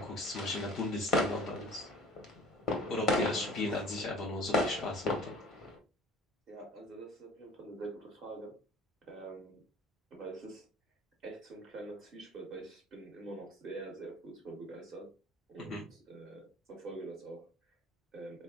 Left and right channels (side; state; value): both; normal; correlation 0.47